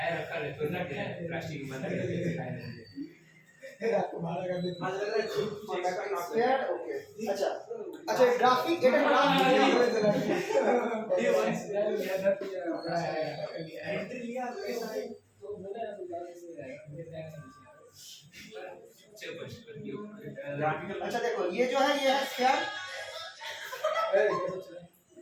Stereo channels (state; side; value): identical; both; correlation 1.00